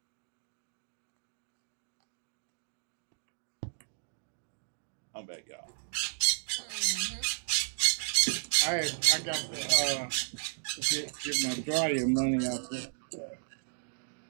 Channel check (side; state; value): left; silent; digital silence